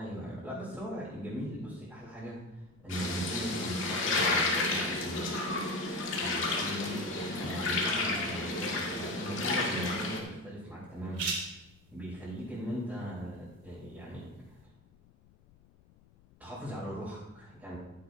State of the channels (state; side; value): noise; left; rumble, 27 dB below the sound